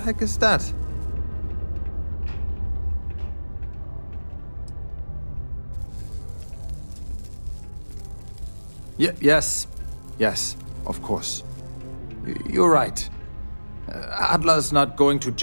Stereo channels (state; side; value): inverted; both; correlation -1.00